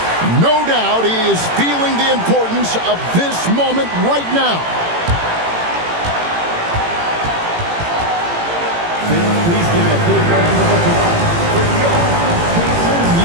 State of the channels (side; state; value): left; late; 18 ms